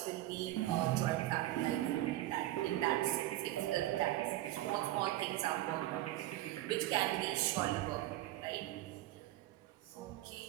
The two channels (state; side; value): quieter; left; 15.7 dB